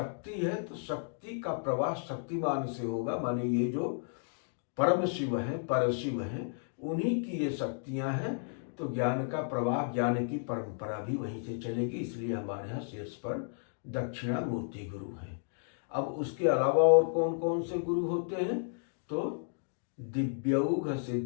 है। तो शक्ति का प्रवाह शक्तिमान से होगा, माने ये जो परम शिव हैं, परशिव हैं, उन्हीं की ये शक्तियां हैं। तो ज्ञान का प्रवाह, ज्ञान की परंपरा भी वहीं से चलेगी, इसलिए हमारे यहाँ शीर्ष पर दक्षिणामूर्ति गुरु हैं। अब उसके अलावा और कौन कौन से गुरु होते हैं, तो दिव्यौघ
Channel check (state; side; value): silent; right; digital silence